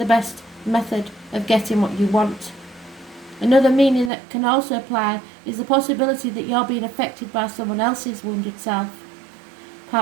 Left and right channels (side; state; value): left; drops out; at 4.1 s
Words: best method of getting what you want. Another meaning that can also apply is the possibility that you're being affected by someone else's wounded self.